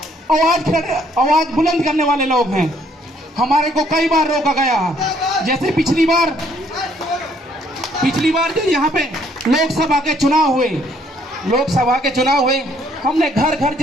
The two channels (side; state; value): both; normal; correlation 0.66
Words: आवाज बुलंद करने वाले लोग हैं। हमारे को कई बार रोका गया, जैसे पिछली बार जो यहाँ पे लोकसभा के चुनाव हुए, हमने घर घर